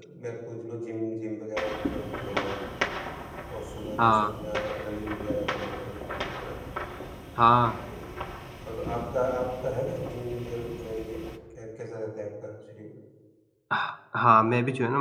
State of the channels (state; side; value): identical; both; correlation 1.00